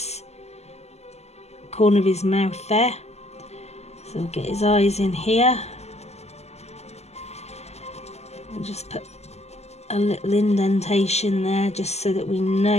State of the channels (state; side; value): late; right; 0.31 ms